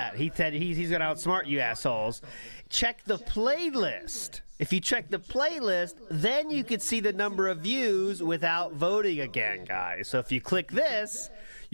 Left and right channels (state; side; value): inverted; both; correlation -1.00